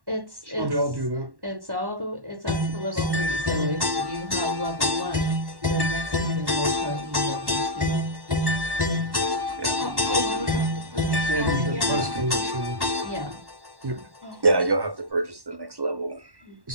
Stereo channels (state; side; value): late; left; 1.1 ms